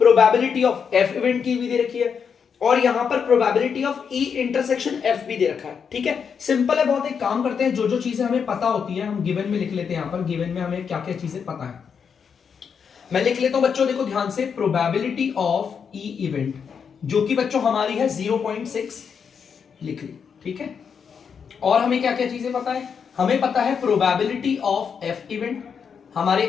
ऑफ एफ इवेंट की भी दे रखी है। और यहां पर probability of E intersection F भी दे रखा है। ठीक है, सिंपल है बहुत। एक काम करते हैं, जो जो चीजें हमें पता होती है हम गिवन में लिख लेते हैं। यहां पर गिवन में हमें क्या क्या चीजें पता है मैं लिख लेता हूं बच्चों। देखो ध्यान से, प्रोबेबिलिटी ऑफ ई इवेंट जो कि बच्चों हमारी है 0.6 लिख ली। ठीक है, और हमें क्या क्या चीजें पता है? हमें पता है प्रोबेबिलिटी ऑफ एफ इवेंट। हमारे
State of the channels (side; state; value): right; quieter; 6.7 dB